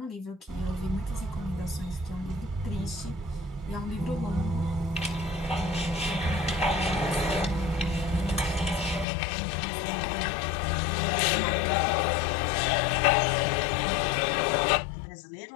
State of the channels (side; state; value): right; drops out; at 9.1 s